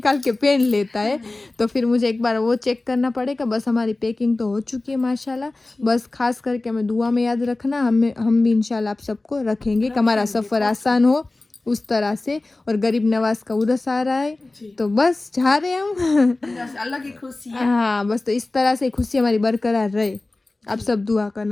के पहन लेता है। तो फिर मुझे एक बार वो चेक करना पड़ेगा। बस हमारी पैकिंग तो हो चुकी है माशाल्लाह। बस खास करके हमें दुआ में याद रखना, हम भी इंशाल्लाह आप सबको रखेंगे कि हमारा सफ़र आसान हो उस तरह से। और गरीब नवाज का उर्स आ रहा है, तो बस जा रहे हैं हम। बस अलग ही खुशी है। हाँ, बस तो इस तरह से खुशी हमारी बरकरार रहे, आप सब दुआ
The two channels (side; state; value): right; quieter; 3.0 dB